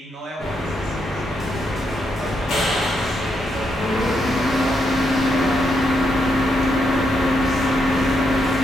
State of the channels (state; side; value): normal; both; correlation 0.80